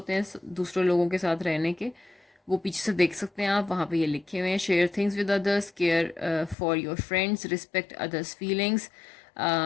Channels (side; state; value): right; drops out; at 6.6 s